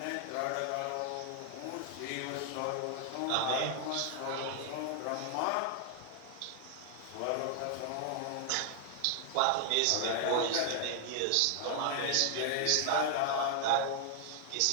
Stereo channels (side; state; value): both; different; correlation 0.00